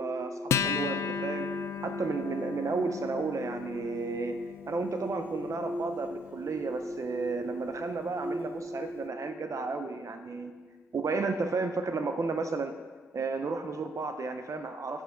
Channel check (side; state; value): both; normal; correlation 0.66